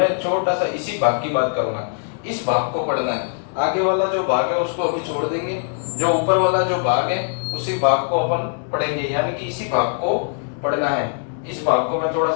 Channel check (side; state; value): right; silent; digital silence